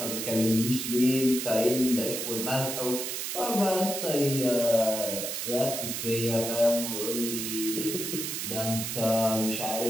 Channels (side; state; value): right; noise; hiss, 4 dB below the sound